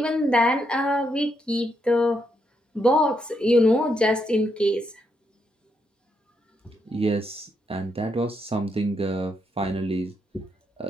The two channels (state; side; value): normal; both; correlation 0.79